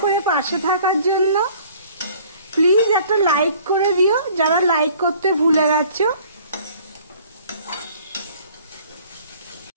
করে পাশে থাকার জন্য। প্লিজ একটা লাইক করে দিও যারা লাইক করতে ভুলে গেছো।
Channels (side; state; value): both; inverted; correlation -0.53